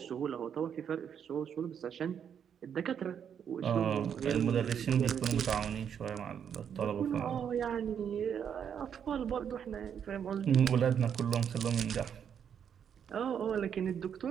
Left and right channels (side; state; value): left; quieter; 8.1 dB